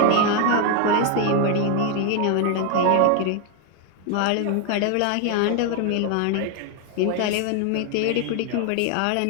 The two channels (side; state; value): both; different; correlation 0.01